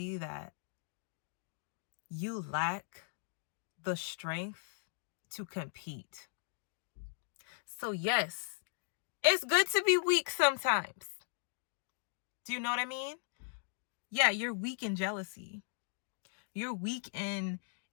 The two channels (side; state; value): right; silent; digital silence